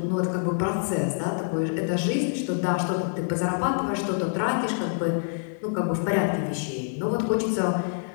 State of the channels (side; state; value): right; silent; digital silence